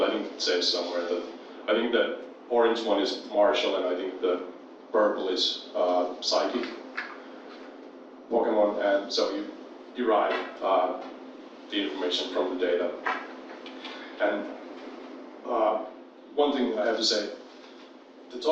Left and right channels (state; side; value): identical; both; correlation 1.00